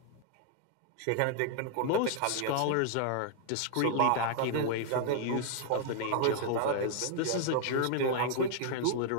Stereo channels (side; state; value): both; different; correlation 0.00